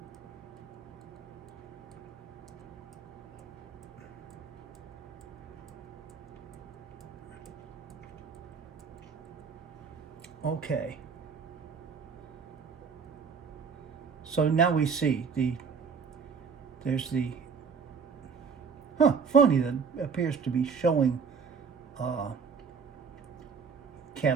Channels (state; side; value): quieter; left; 5.9 dB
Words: Okay. So now we see there's the, funny, that appears to be showing